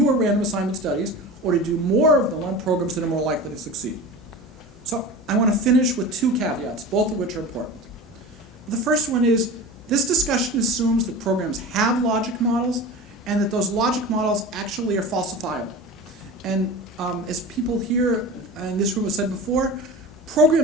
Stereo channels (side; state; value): both; normal; correlation 0.33